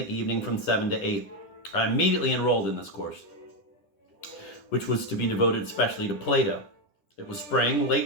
evening from 7 to 8. I immediately enrolled in this course, which was to be devoted especially to Plato. It was spring,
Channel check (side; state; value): right; late; 10 ms